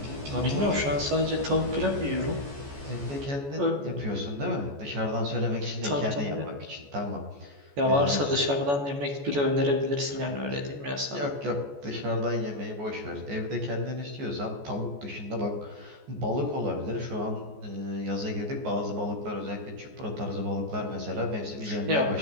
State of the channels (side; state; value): left; late; 14 ms